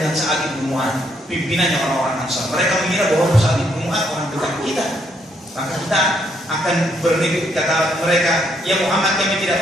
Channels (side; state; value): both; normal; correlation 0.73